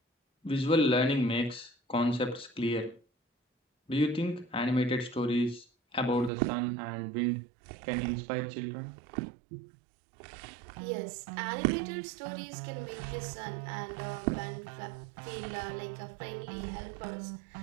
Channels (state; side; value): drops out; left; at 6.3 s